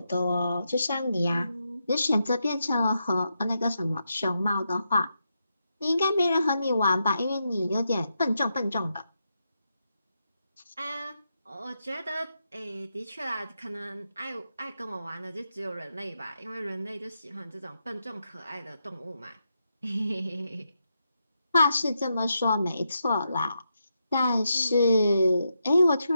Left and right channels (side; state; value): both; inverted; correlation -0.84